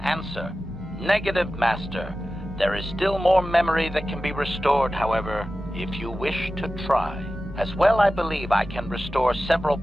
Answer. Negative, Master. There is still more memory that can be restored, however, if you wish to try. As well, I believe I can restore several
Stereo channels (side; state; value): both; normal; correlation 0.94